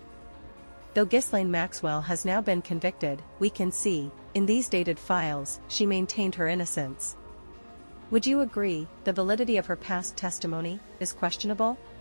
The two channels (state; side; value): inverted; both; correlation -1.00